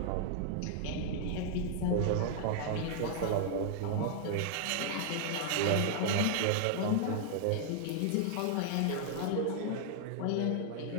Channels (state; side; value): different; both; correlation 0.00